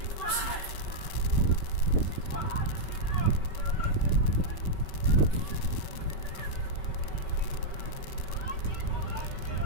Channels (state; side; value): late; right; 5.3 ms